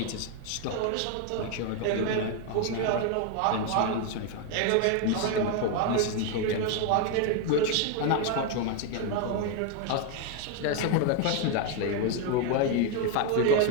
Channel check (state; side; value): different; both; correlation 0.01